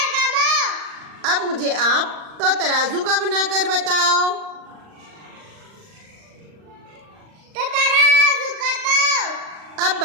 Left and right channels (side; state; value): left; late; 39 ms